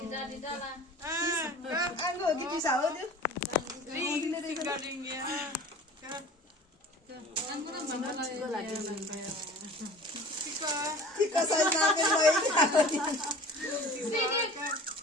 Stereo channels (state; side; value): normal; both; correlation 0.42